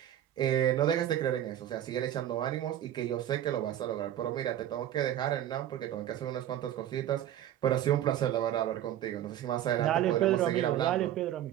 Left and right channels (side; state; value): left; quieter; 11.7 dB